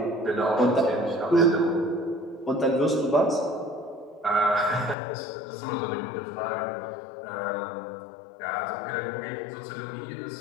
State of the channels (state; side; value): drops out; right; at 5.0 s